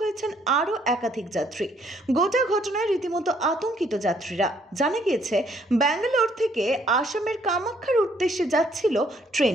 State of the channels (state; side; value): normal; both; correlation 0.66